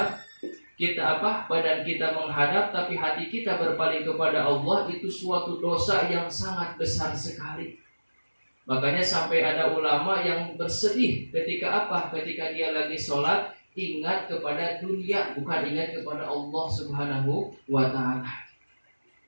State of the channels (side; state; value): both; inverted; correlation -1.00